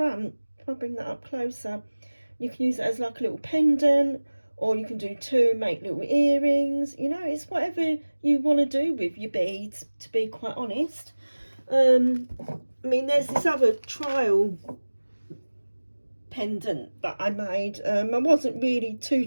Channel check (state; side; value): inverted; both; correlation -1.00